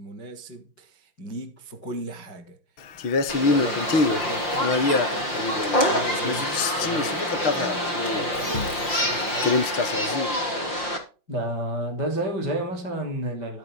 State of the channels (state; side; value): late; right; 5.7 ms